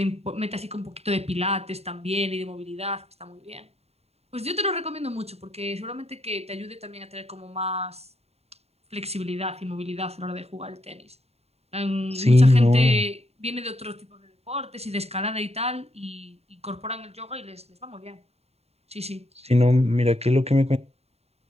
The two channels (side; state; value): left; late; 0.30 ms